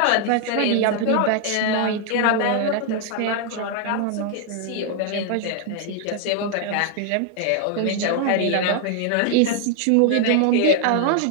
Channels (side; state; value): both; different; correlation 0.00